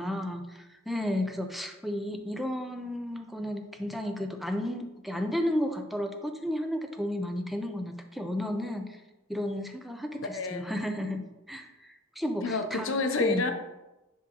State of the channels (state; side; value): normal; both; correlation 0.65